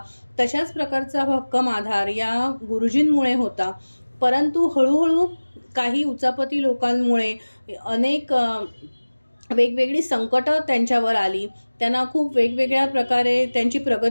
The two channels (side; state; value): both; inverted; correlation -1.00